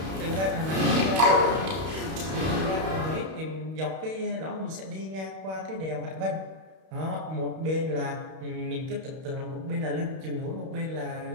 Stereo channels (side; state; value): left; late; 31 ms